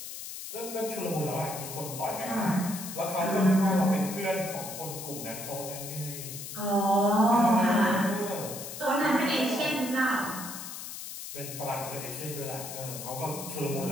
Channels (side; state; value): left; noise; hiss, 9 dB below the sound